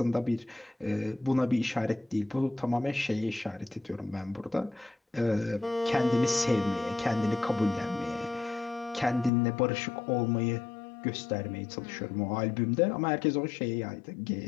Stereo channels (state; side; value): drops out; right; at 9.3 s